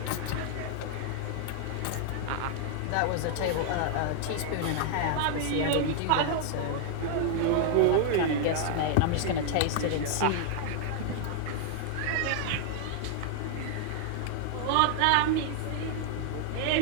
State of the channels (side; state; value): both; different; correlation -0.01